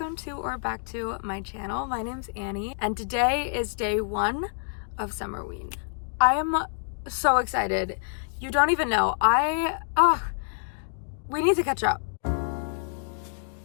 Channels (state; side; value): silent; right; digital silence